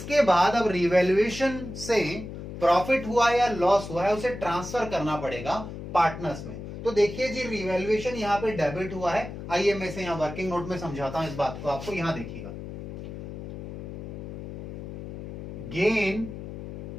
बाद अब रिवैल्यूएशन से प्रॉफिट हुआ या लॉस हुआ है उसे ट्रांसफर करना पड़ेगा पार्टनर्स में। तो देखिए जी, रिवैल्यूएशन यहां पे डेबिट हुआ है। आइए मैं इसे यहां वर्किंग नोट में समझाता हूं इस बात को आपको। यहां देखिएगा, गेन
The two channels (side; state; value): left; noise; hum, 10 dB below the sound